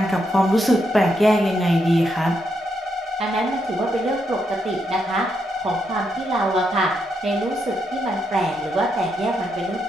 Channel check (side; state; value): both; normal; correlation 0.80